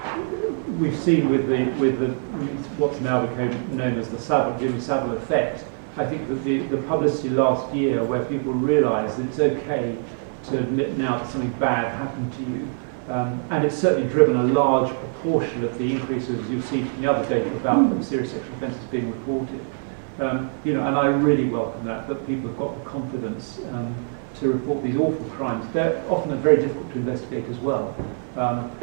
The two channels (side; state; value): left; silent; digital silence